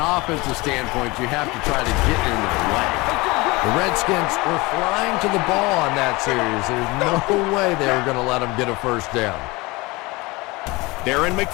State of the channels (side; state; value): right; quieter; 23.4 dB